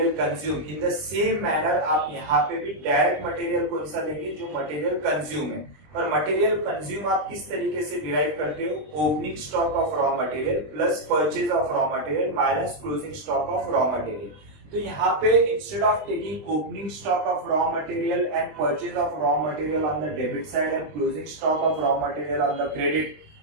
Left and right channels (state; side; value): late; left; 20 ms